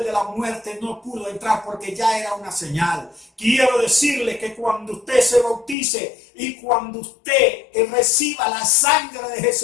de la muerte no pudo entrar porque ya era una señal. Quiero decirle que cuando usted se bautice y cuando usted reciba la sangre de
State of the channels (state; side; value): drops out; right; at 5.8 s